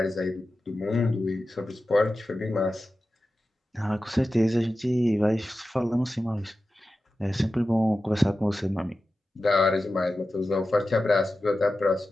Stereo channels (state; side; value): normal; both; correlation 0.93